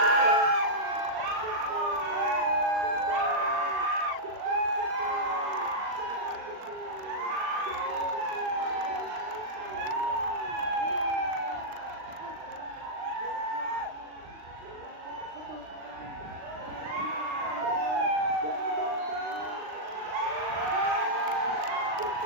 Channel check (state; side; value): late; left; 39 ms